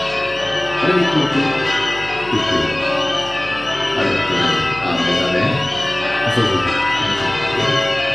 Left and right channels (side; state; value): left; noise; hum, 20 dB below the sound